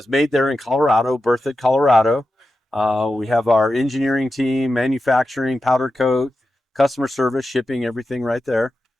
made there in Colorado, Berthoud, Colorado. We have our engineering team, manufacturing, powder coat, customer service, shipping, everything right there.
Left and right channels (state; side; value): normal; both; correlation 0.91